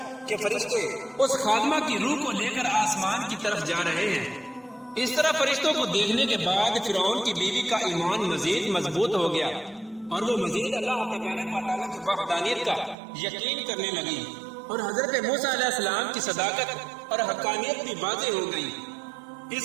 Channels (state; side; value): drops out; left; at 13.0 s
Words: کہ فرشتے اس خادمہ کی روح کو لے کر آسمان کی طرف جا رہے ہیں، اس طرح فرشتوں کو دیکھنے کے بعد فرعون کی بیوی کا ایمان مزید مضبوط ہو گیا اور وہ مزید اللہ تبارک و تعالیٰ کی وحدانیت کا یقین کرنے لگی، اور حضرت موسیٰ علیہ السلام کی صداقت اور حقانیت بھی واضح ہو گئی۔